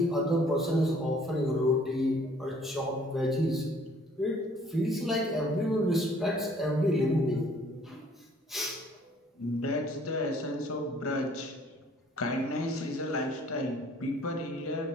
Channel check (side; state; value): both; normal; correlation 0.58